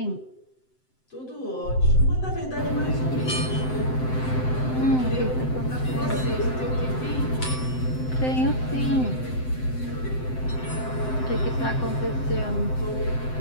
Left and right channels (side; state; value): right; late; 7.8 ms